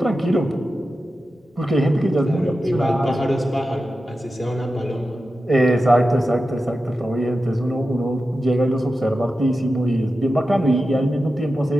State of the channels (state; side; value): normal; both; correlation 0.92